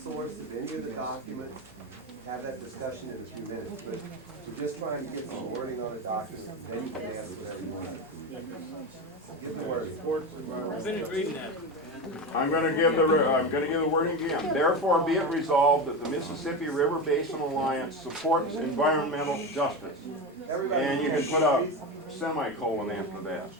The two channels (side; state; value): both; normal; correlation 0.20